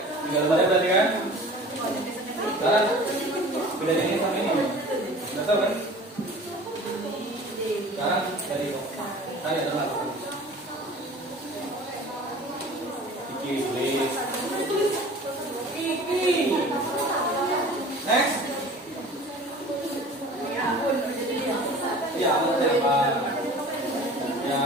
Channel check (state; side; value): normal; both; correlation 0.43